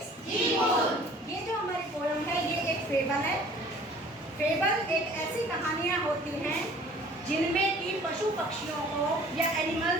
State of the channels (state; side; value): normal; both; correlation 0.50